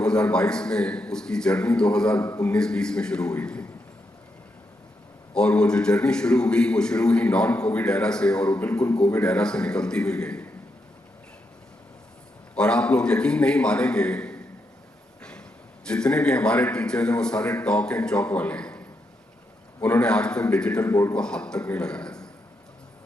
में, उसकी जर्नी 2019-20 में शुरू हुई थी। और वो जो जर्नी शुरू हुई नॉन कोविड एरा से और वो बिल्कुल कोविड एरा से निकलती हुई गई। और आप लोग यकीन नहीं मानेंगे, जितने भी हमारे टीचर्स हैं वो सारे टॉक एंड चॉक वाले हैं। उन्होंने आज तक डिजिटल बोर्ड को हाथ तक नहीं लगाया था।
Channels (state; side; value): normal; both; correlation 0.82